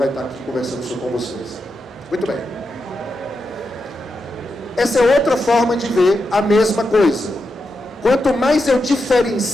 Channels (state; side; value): normal; both; correlation 0.87